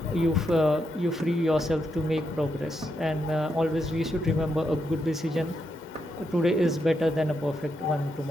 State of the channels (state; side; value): normal; both; correlation 0.82